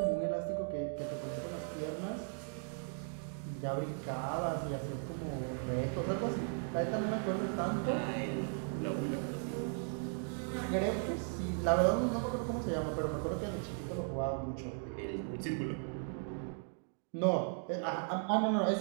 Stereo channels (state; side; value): silent; left; 53 dB below the other